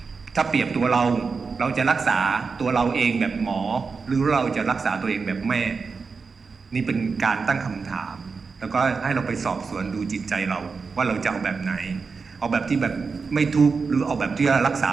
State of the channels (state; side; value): quieter; left; 4.9 dB